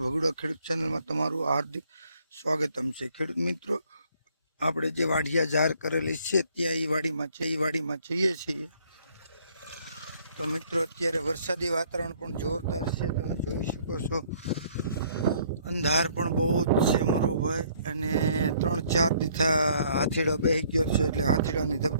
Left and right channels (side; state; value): both; inverted; correlation -0.62